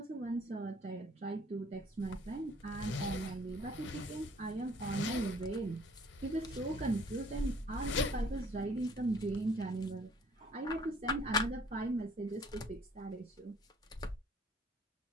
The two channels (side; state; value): both; normal; correlation 0.57